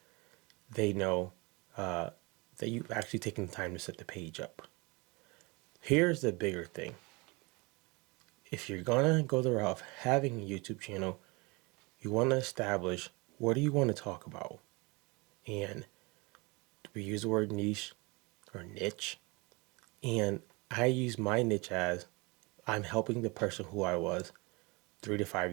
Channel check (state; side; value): quieter; left; 26.8 dB